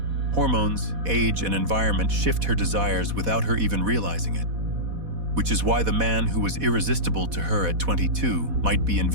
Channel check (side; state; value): left; late; 4.1 ms